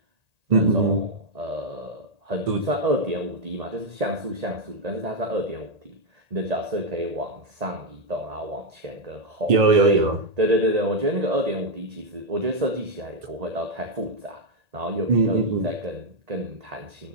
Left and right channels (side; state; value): left; late; 1.8 ms